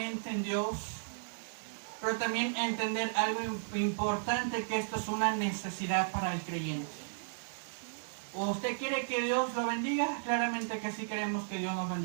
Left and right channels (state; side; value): silent; left; 55 dB below the other